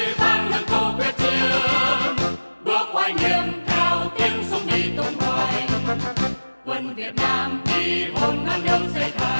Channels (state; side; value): inverted; both; correlation -1.00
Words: vang lên câu quyết chiến, bước oai nghiêm theo tiếng súng đi tung hoành. Quân Việt Nam đi hồn non nước xây